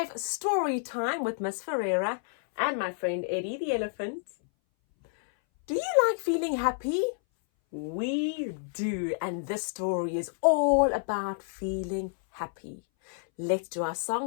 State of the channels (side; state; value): right; silent; 58 dB below the other